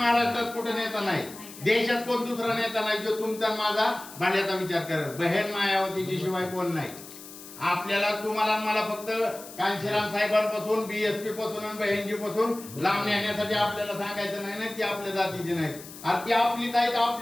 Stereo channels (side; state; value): left; noise; hiss, 16 dB below the sound